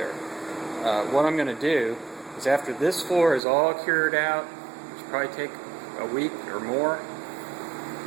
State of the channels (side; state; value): left; drops out; at 3.4 s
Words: What I'm going to do is, after this floor is all cured out, which will probably take a week or more,